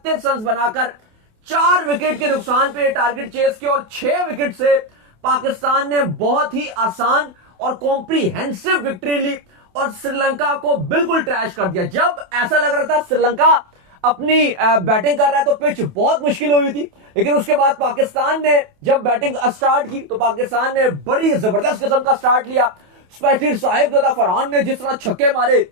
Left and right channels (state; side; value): late; left; 28 ms